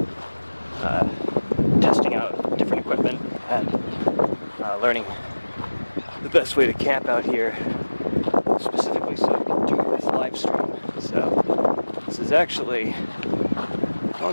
testing out different equipment and learning the best way to camp out here, specifically so I can do this live stream. So this is actually a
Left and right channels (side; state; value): both; inverted; correlation -1.00